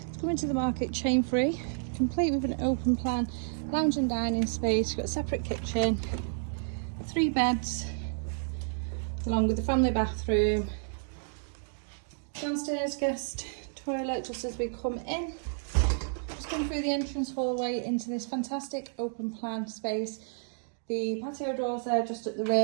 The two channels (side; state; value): left; silent; digital silence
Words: It's coming to the market chain free, complete with an open plan lounge and dining space. Got a separate kitchen, 3 beds along with the family bathroom, downstairs guest toilet just as we come in. Just going through the entrance hallway into this fantastic open plan space. The patio doors there just at the